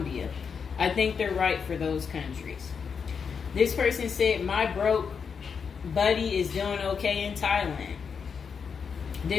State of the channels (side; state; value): right; quieter; 6.2 dB